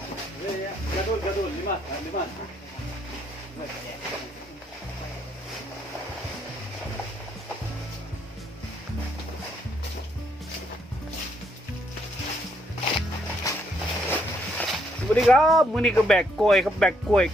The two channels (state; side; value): normal; both; correlation 0.72